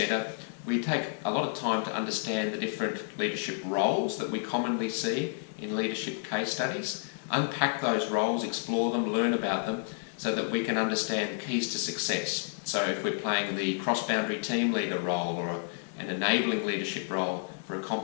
we take a lot of time to understand the different leadership roles that we commonly see in leadership case studies, unpack those roles, explore them, learn about them, so that we can understand the keys to success. So if we're playing the cross-boundary team leader role, or an enabling leadership role for a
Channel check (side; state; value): right; silent; digital silence